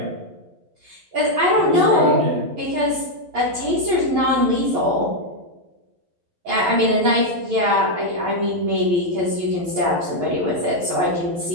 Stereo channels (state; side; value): late; left; 11 ms